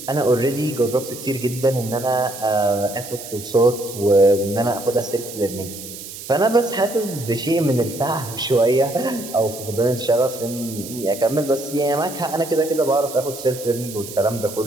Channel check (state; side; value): noise; right; hiss, 12 dB below the sound